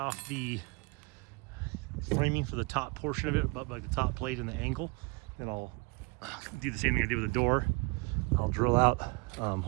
the framing for the top portion of it, about like the top plate and the angle. Then I'll do the same thing I did with the door. I'll drill out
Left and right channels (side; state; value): left; quieter; 28.4 dB